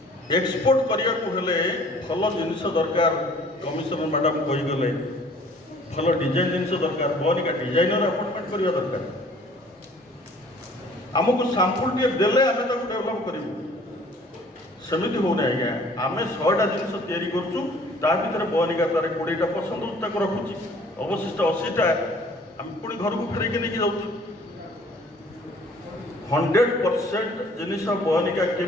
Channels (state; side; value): normal; both; correlation 0.54